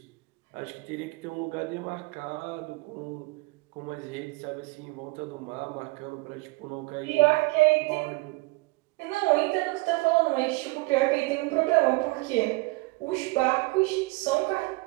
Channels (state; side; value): quieter; left; 24.2 dB